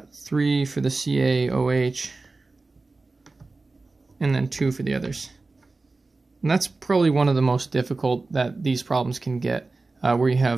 for the CaOH. And then 2 for the others. And that's probably one of the most difficult that these problems can get, where you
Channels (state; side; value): quieter; left; 3.6 dB